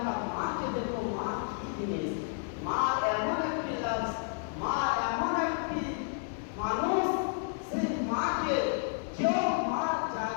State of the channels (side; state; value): right; silent; digital silence